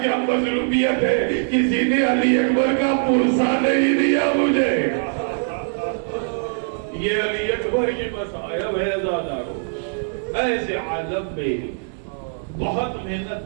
کیا مظلومیت ہے، کسی نے علی اکبر کا پرسہ نہیں دیا مجھے. یہ علی اکبر کی مصائب ہے زادارو. ایسے عالم میں بہت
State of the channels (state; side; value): silent; left; 59 dB below the other